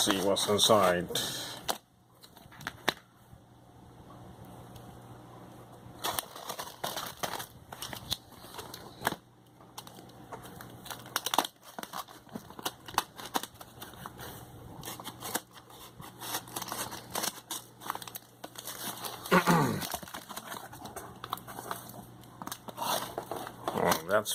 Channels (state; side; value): identical; both; correlation 1.00